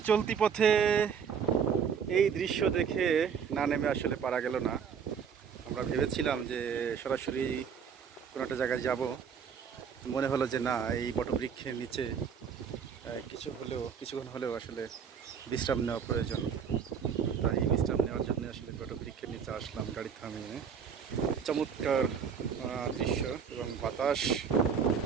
চলতি পথে এই দৃশ্য দেখে না নেমে আসলে পারা গেল না। আমরা ভেবেছিলাম যে সরাসরি কোনো একটা জায়গায় যাব, মনে হলো যে না, এই বটবৃক্ষের নিচে কিছুক্ষণ হলেও আসলে বিশ্রাম নেওয়া প্রয়োজন। তাই বিশ্রাম নেওয়ার জন্য আসলে বটবৃক্ষের নিচে আসলাম গাড়ি থামিয়ে। চমৎকার দৃশ্য এবং বাতাস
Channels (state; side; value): quieter; left; 7.0 dB